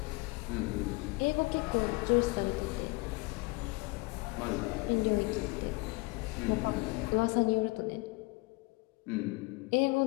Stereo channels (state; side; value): quieter; right; 25.6 dB